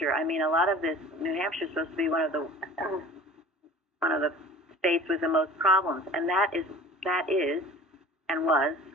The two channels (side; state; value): both; normal; correlation 0.43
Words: I mean, a lot of this, New Hampshire is supposed to be one of the states with the most problems, and that is and was